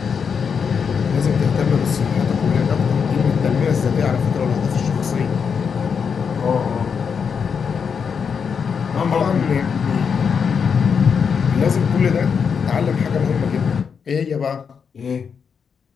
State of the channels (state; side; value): quieter; right; 6.4 dB